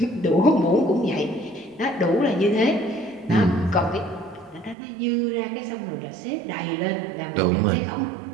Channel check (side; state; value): left; drops out; at 4.8 s